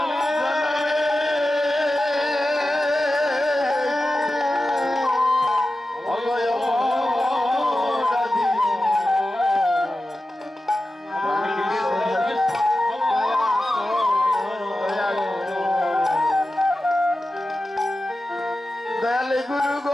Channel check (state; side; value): normal; both; correlation 0.93